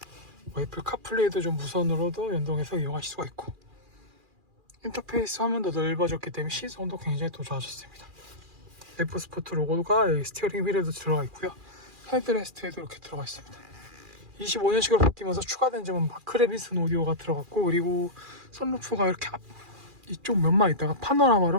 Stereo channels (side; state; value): left; late; 2.4 ms